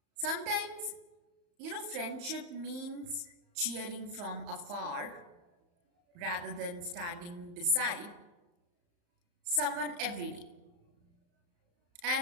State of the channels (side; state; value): left; late; 35 ms